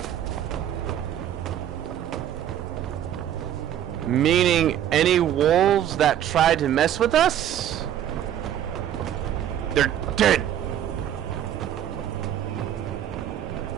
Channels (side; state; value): left; quieter; 10.8 dB